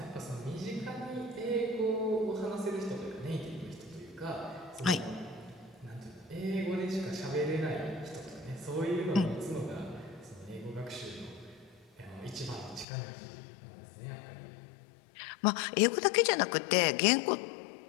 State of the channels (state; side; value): drops out; right; at 12.9 s